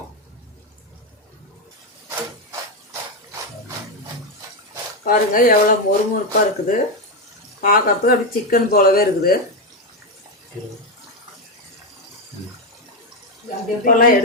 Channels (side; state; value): both; normal; correlation 0.07